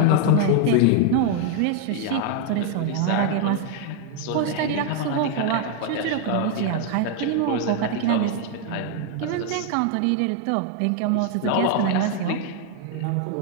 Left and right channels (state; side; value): different; both; correlation 0.01